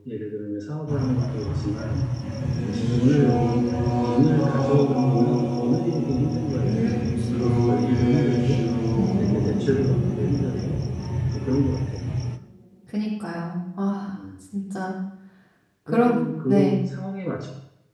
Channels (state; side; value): identical; both; correlation 1.00